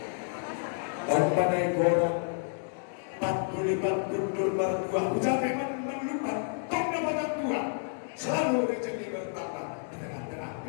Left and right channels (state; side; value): silent; right; digital silence